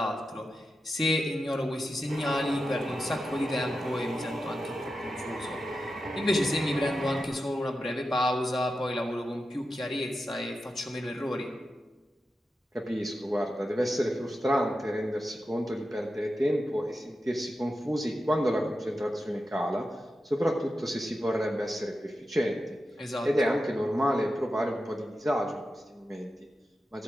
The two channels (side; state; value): both; normal; correlation 0.90